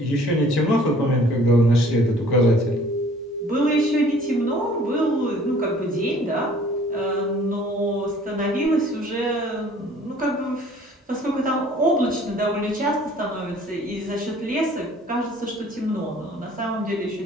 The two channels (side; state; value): both; normal; correlation 0.53